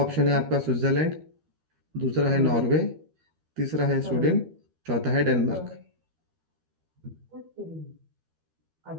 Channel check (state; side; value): late; left; 13 ms